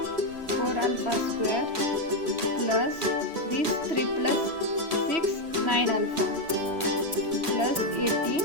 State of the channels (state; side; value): late; left; 3.1 ms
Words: 4 alpha square plus this 3 plus 6, 9 alpha plus 18,